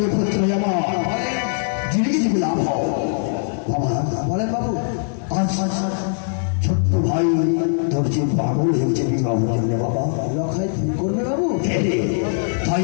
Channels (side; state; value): right; silent; 65 dB below the other